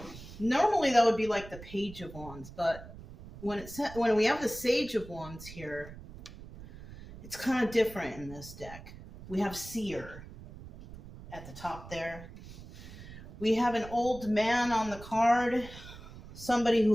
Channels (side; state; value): right; noise; rumble, 15 dB below the sound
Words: normally that would be like the Page of Wands, but when we have the Sage of Wands here, it's kind of different in this deck. We have Seer at the top there. We have an old man on the card, somebody